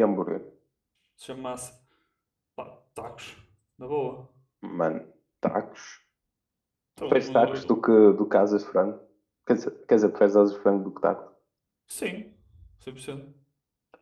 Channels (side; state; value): both; identical; correlation 1.00